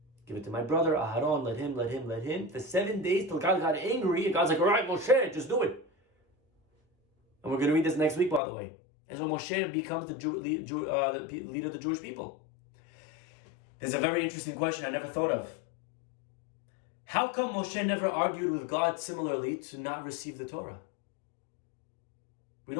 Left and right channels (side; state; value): right; drops out; at 8.4 s